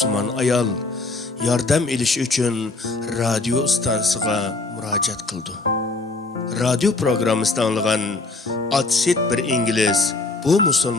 ayol yordam elish uchun radio stansiyasiga murojaat qildi. Radio programmasida anlagan Atsit bir İngiliz bu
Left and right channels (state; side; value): quieter; right; 3.4 dB